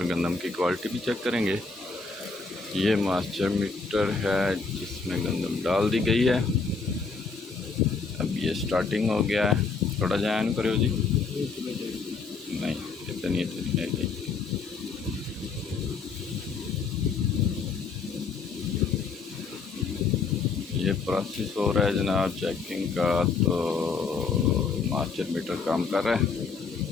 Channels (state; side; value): quieter; right; 4.6 dB